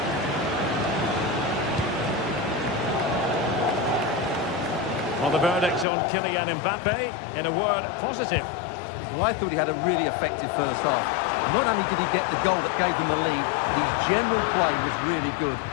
Well, the verdict's on Kylian Mbappe. In a word, positive. Well, I thought he had a really effective first half. Not only did he get the goal that gave them the lead, but his general play was really good.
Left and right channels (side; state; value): right; drops out; at 5.9 s